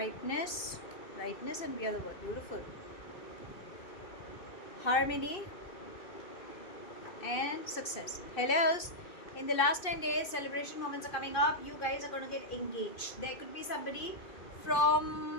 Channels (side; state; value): right; late; 2.6 ms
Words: and we are the world. Beautiful. Harmony and success. Hellos. In the last 10 days, celebration moments are coming up. You guys are going to get engaged. There could be somebody